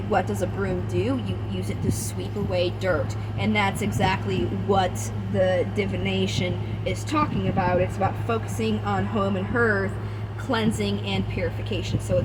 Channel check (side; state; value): both; identical; correlation 1.00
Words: what does a broom do? You use it to sweep away dirt, and that's exactly what the divination is talking about. It's about focusing on home and hearth, cleansing and purification. So